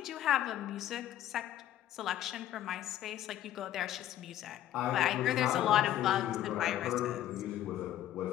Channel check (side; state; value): right; quieter; 12.4 dB